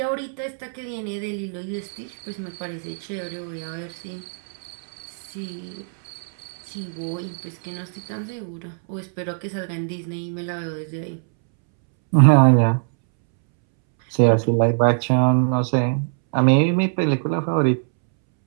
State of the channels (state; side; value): silent; left; 64 dB below the other